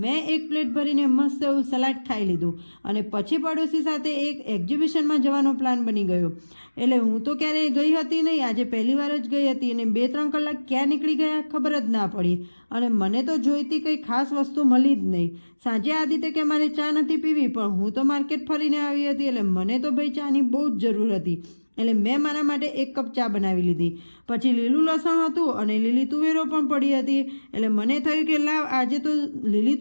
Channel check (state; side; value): inverted; both; correlation -1.00